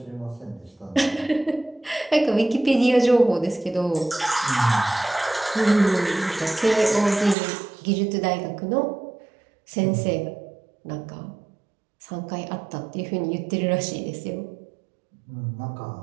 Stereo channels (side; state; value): left; drops out; at 7.4 s